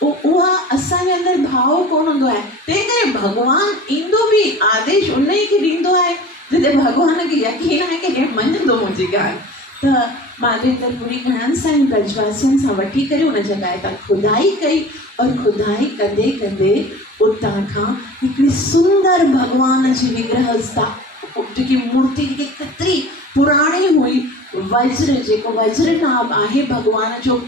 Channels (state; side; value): normal; both; correlation 0.40